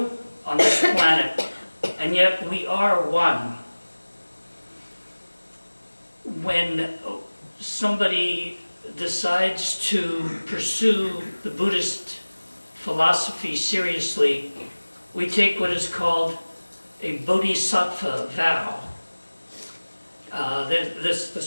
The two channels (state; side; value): inverted; both; correlation -1.00